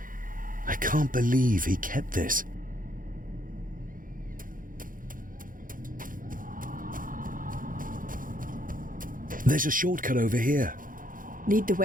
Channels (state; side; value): late; left; 0.40 ms